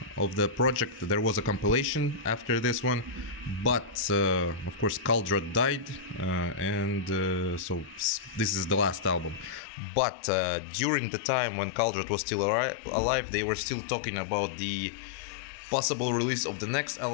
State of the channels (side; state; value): right; drops out; at 9.6 s